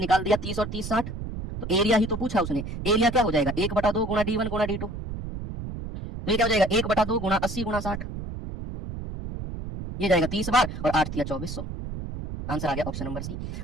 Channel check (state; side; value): noise; right; rumble, 7 dB below the sound